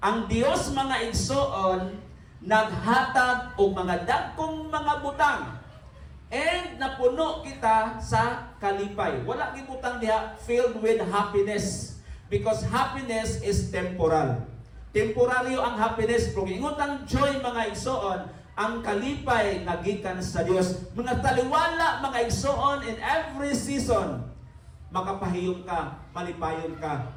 Dios mga igsoon naghatag og mga dagkong mga butang and napuno kita sa kalipay. Wala gibutang diha filled with happiness because happiness is temporal. Temporaryo ang happiness, pero ingon ang joy mga igsoon, ang kalipay nga gikan sa Dios. Mga taliwala mga igsoon in every season, makapahiyom ka, malipayon ka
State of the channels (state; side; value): identical; both; correlation 1.00